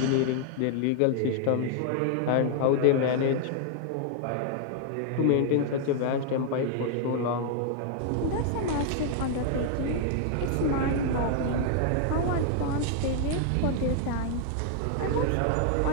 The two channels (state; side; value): different; both; correlation 0.00